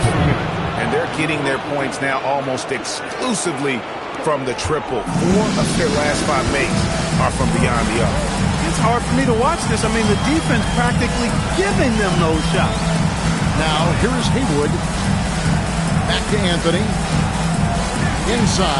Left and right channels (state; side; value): identical; both; correlation 1.00